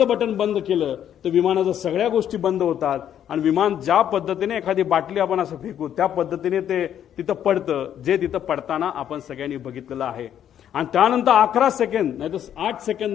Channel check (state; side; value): quieter; right; 10.0 dB